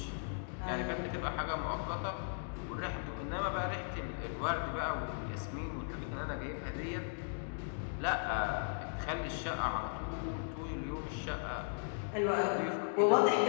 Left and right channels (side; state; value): right; silent; digital silence